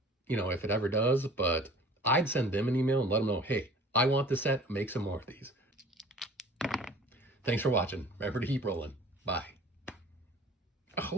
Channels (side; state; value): both; normal; correlation 0.47